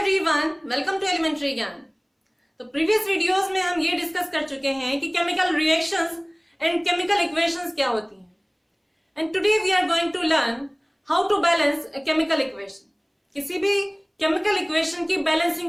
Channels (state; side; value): identical; both; correlation 1.00